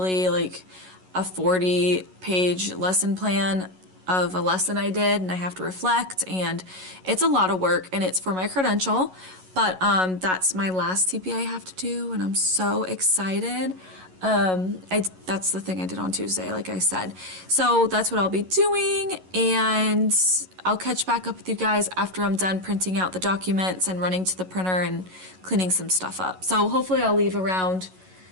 like a 40-page lesson plan of a lesson I did, and I have to reflect, and it's a lot of work, and it's for my credential. But that's my last TPA I have to do, and I'm so excited. That's the thing I did on Tuesday, like I said. So that's what I'll be doing, and I'll catch back up with you guys after I'm done printing out the documents and running to the printer and cleaning some stuff up. So hopefully I'll leave around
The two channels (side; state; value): left; late; 11 ms